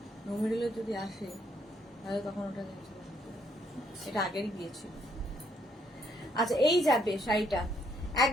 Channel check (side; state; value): both; normal; correlation 0.70